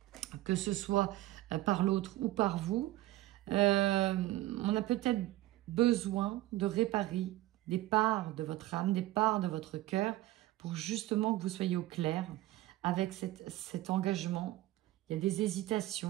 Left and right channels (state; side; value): quieter; left; 16.6 dB